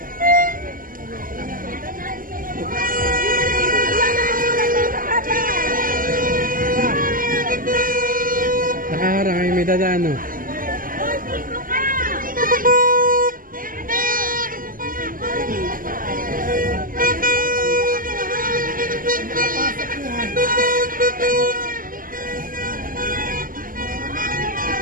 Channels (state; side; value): late; left; 0.41 ms